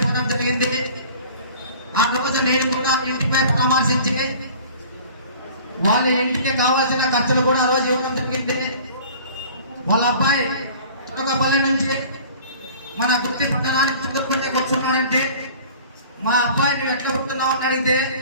జరిగింది. ఆ రోజు నేను కూడా ఇంటిపై పరామర్శించి వాళ్ళ ఇంటికి కావాల్సిన ఖర్చులు కూడా ఆ రోజు ఇవ్వడం జరిగింది. వాళ్ళ అబ్బాయి తులకపల్లి నుంచి మన గుర్తి పట్టణానికి చుట్టుకుంటే కూర్చున్నాడంటే మా అబ్బాయి నువ్వు ఎట్లా పుడుతున్నావు అని అడిగితే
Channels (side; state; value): both; inverted; correlation -0.46